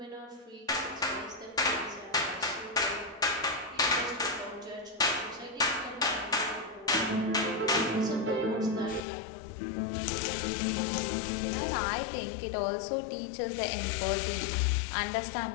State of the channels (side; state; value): right; drops out; at 9.0 s